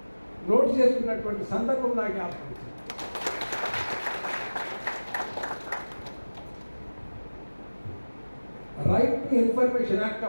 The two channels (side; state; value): both; inverted; correlation -1.00